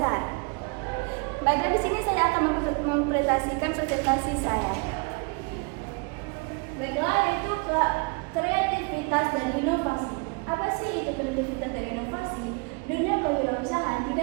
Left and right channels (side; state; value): left; quieter; 31.4 dB